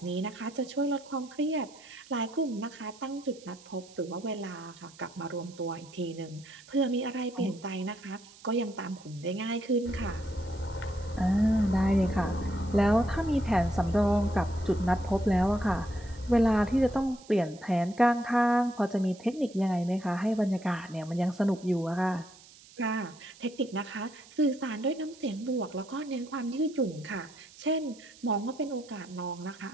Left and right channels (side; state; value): right; noise; hiss, 22 dB below the sound